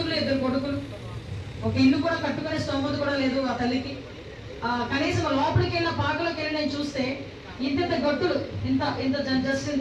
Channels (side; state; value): both; identical; correlation 1.00